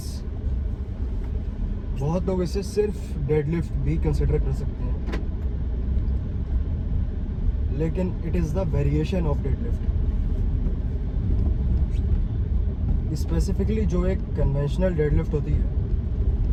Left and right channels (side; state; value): both; identical; correlation 1.00